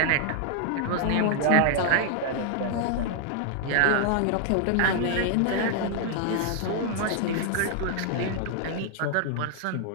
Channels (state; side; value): different; both; correlation 0.00